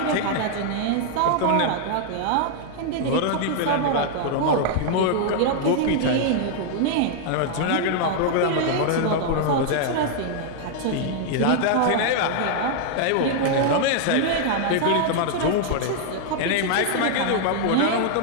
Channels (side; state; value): both; different; correlation 0.00